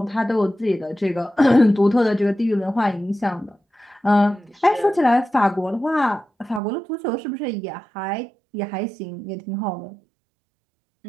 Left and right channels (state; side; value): drops out; left; at 6.6 s